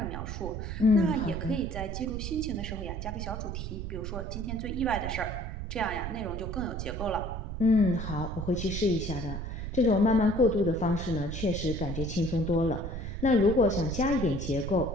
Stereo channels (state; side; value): noise; right; rumble, 5 dB below the sound